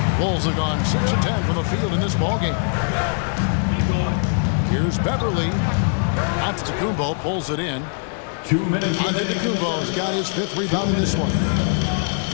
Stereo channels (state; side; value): silent; right; 65 dB below the other